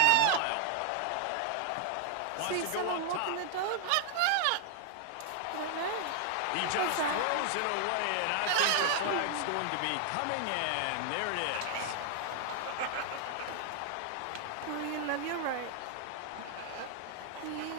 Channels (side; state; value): both; different; correlation 0.00